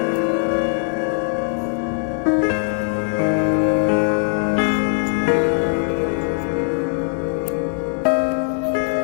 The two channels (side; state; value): right; silent; digital silence